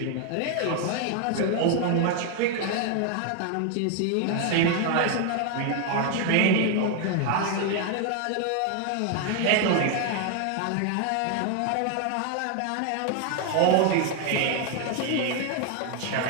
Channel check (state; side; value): different; both; correlation 0.00